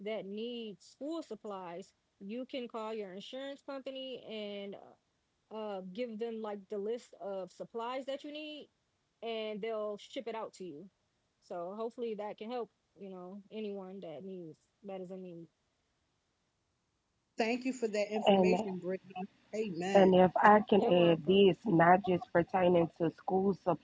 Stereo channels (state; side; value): identical; both; correlation 1.00